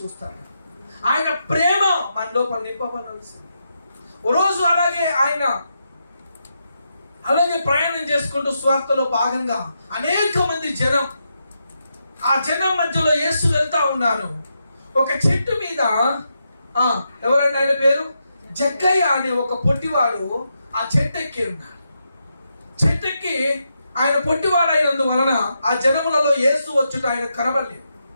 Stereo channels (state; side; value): inverted; both; correlation -0.84